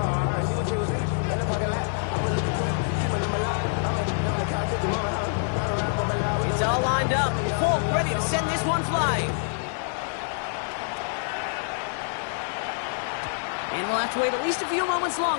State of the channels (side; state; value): right; silent; digital silence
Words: It's all lined up. Folk ready to send this one flying. And we'll have to wait at least a few moments